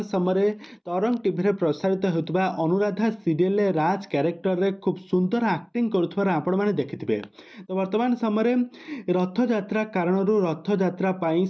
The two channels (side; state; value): both; identical; correlation 1.00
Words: समय तरंग टीवी रे प्रसारित होतबा अनुराधा सीरियल राज कैरेक्टर रे खूब सुंदर एक्टिंग करुथबार आपण माने देखिथिबे। तो वर्तमान समय रथ यात्रा कारण रथ यात्रा पाई